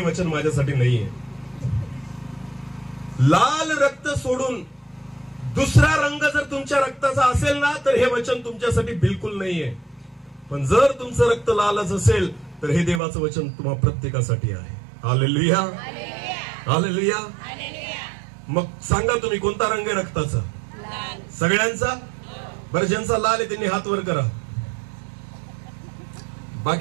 वचन माझ्यासाठी नाहीये. लाल रक्त सोडून दुसरा रंग जर तुमच्या रक्ताचा असेल ना, तर हे वचन तुमच्यासाठी बिलकुल नाहीये. पण जर तुमचं रक्त लालच असेल, तर हे देवाचं वचन तुम्हा प्रत्येकासाठी आहे. हालेलुया. हालेलुया. मग सांगा तुम्ही, कोणता रंग आहे रक्ताचा? सगळ्यांचा? बरं, ज्यांचा लाल आहे त्यांनी हात वर करा.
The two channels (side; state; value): left; drops out; at 13.0 s